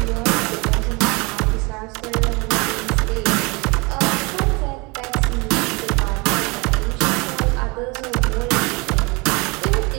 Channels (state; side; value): quieter; left; 27.6 dB